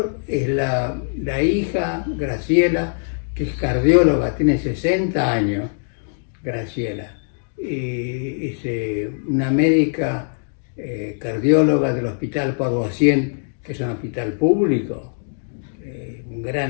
es la hija, Graciela, que es cardióloga, tiene 60 años, Graciela. Y es una médica cardióloga del Hospital Paroissien, que es un hospital público. Un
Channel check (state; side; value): silent; right; digital silence